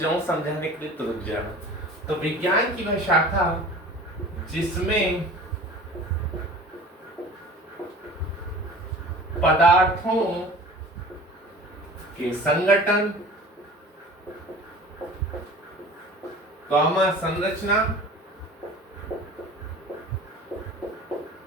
समझाने के लिए तो रुक जाना। तो विज्ञान की वह शाखा जिसमें पदार्थों के संगठन, संरचना,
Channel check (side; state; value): both; normal; correlation 0.41